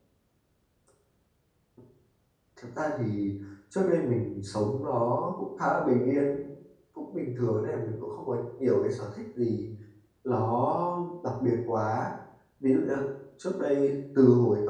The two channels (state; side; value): identical; both; correlation 1.00